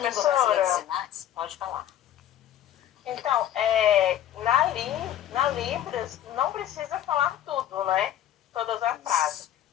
brasileira de sinais, pode falar. Então, na Libras, não precisa falar tudo, né? Todas as frases.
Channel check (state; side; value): quieter; right; 11.5 dB